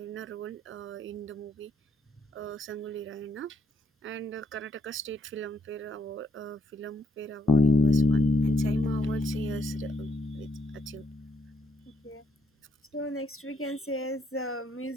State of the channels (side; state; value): both; normal; correlation 0.72